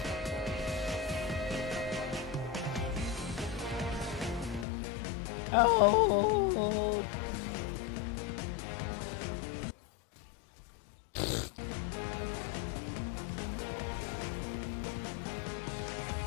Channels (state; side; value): drops out; right; at 4.7 s